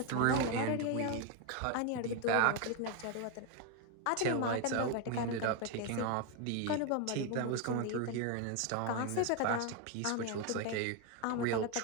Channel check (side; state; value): both; different; correlation 0.01